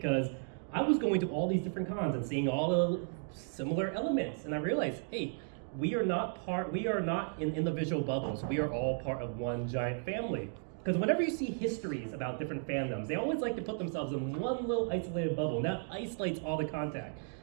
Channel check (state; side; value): silent; left; 55 dB below the other